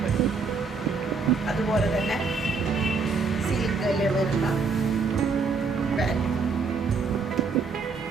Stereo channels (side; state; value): left; quieter; 4.6 dB